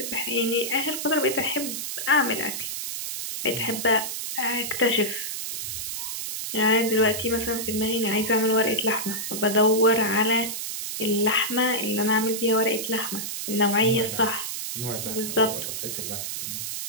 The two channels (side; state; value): right; noise; hiss, 5 dB below the sound